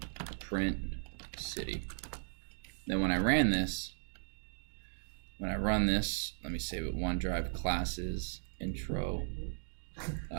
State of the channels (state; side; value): silent; left; digital silence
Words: print city. Then when I run this, let me save it. OneDrive classes intro.